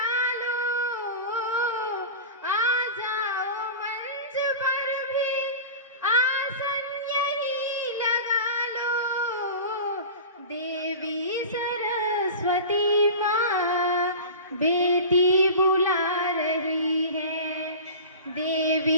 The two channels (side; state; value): both; inverted; correlation -0.33